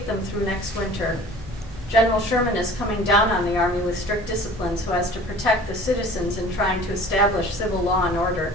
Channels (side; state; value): both; normal; correlation 0.45